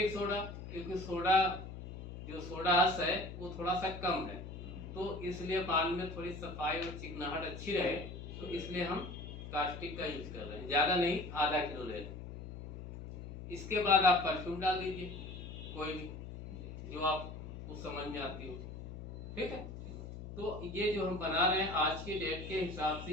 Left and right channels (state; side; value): noise; left; hum, 10 dB below the sound